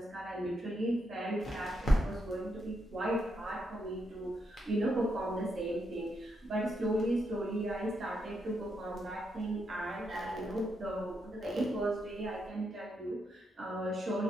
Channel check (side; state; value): both; normal; correlation 0.81